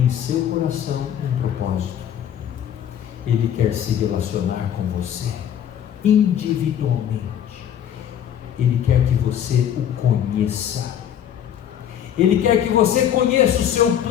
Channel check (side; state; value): right; quieter; 9.7 dB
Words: em seu coração um propósito. Ele quer se relacionar com você individualmente. Ele quer que você o conheça. Ele quer que você conheça o seu